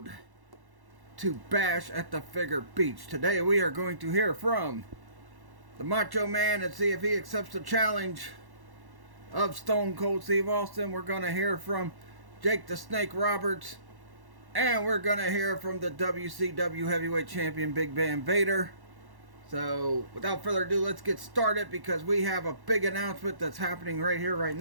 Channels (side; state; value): left; late; 1.1 ms